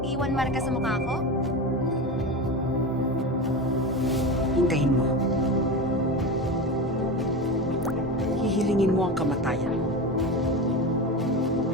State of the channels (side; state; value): both; normal; correlation 0.23